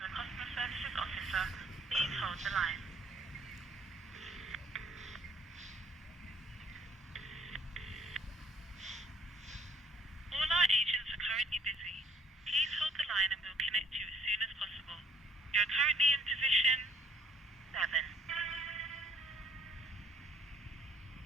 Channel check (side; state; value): both; normal; correlation 0.62